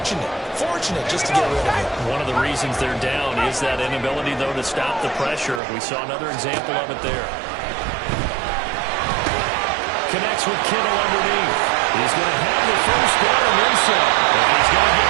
just to get rid of it. One of the reasons they're down is that inability, though, to stop the pressure. We saw another example of it there. Connects with Kittle underneath. He's going to have the first down and then some. And he's going to get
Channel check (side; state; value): left; drops out; at 5.6 s